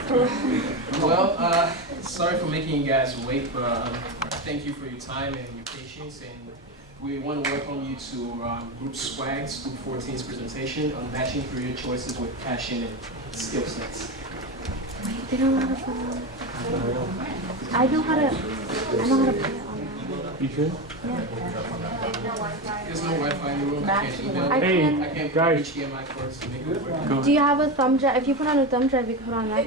Well, sorry for making you guys wait, but thank you for your time and your patience. And we want to welcome you to Group SWAG's Group 14's presentation on matching career choices with passion and skill sets. They don't know how to put it on. I know how to put it on. You should? There's no Wi-Fi in the room. I can't email. I can. I can't put guys. HDMI cords to make it work. Do you have a thumb drive? If you put on a thumb drive, you can put on that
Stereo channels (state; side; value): normal; both; correlation 0.18